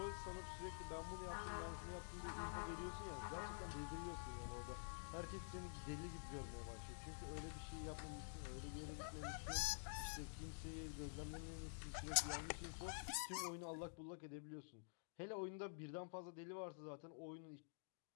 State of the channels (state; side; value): silent; right; digital silence